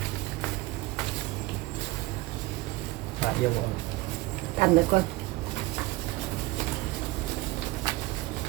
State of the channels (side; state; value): left; quieter; 20.2 dB